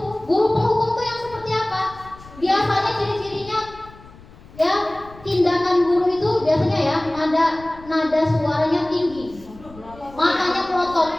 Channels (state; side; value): noise; left; rumble, 21 dB below the sound